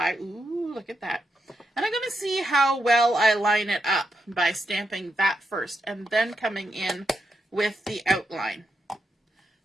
Ooh, look at that. And I'm going to see how well I line it up by stamping that first and then coming in with the outline.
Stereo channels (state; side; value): normal; both; correlation 0.83